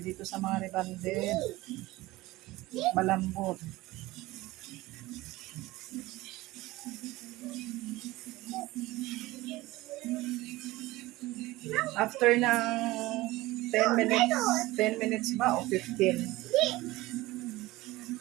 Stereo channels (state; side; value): quieter; left; 19.0 dB